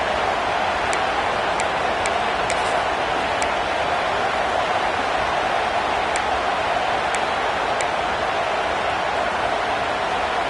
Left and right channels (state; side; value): identical; both; correlation 1.00